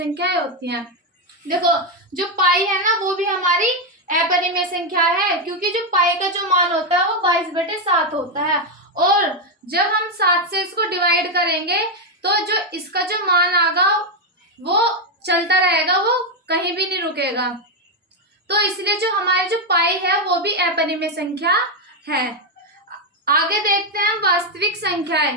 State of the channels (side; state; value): both; normal; correlation 0.05